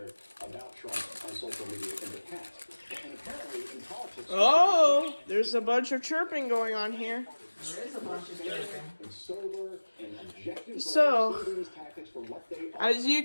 about Trump on social media in the past. And apparently in politics, Oh, there's a bunch of chirping going on here. There is a bunch of chirping. So, as you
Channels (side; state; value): both; inverted; correlation -1.00